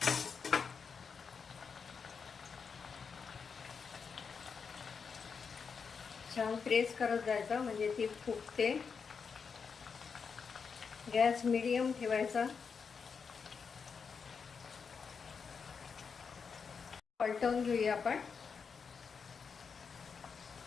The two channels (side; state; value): right; quieter; 5.8 dB